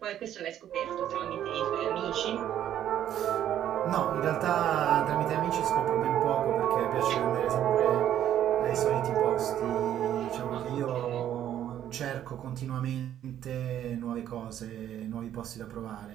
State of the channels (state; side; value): quieter; left; 11.0 dB